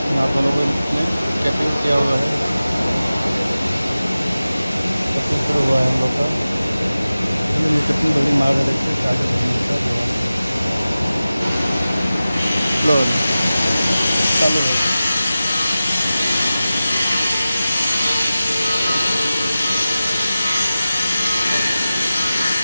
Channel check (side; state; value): both; inverted; correlation -0.95